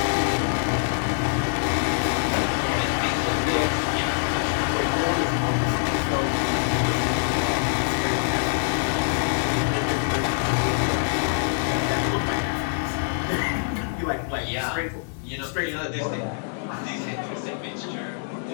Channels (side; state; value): right; silent; digital silence